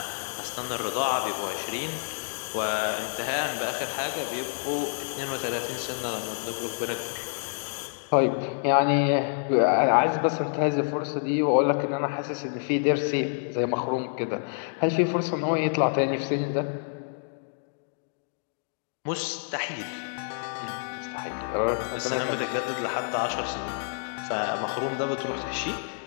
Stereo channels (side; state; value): right; silent; digital silence